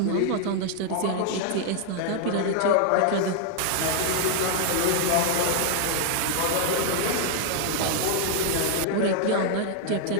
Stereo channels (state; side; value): different; both; correlation 0.00